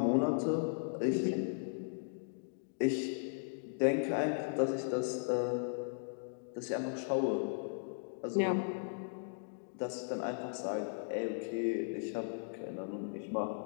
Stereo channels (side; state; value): right; silent; digital silence